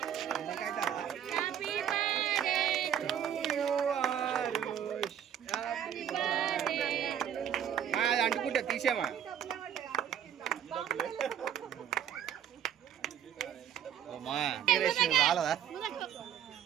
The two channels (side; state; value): left; quieter; 9.6 dB